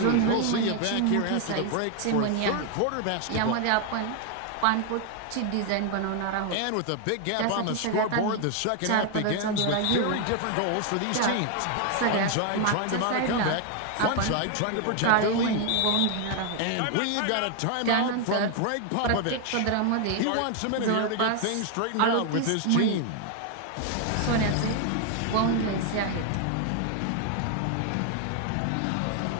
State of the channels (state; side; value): different; both; correlation 0.00